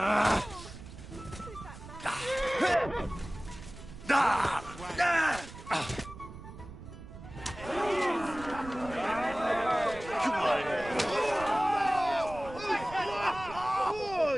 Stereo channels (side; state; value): right; noise; rumble, 14 dB below the sound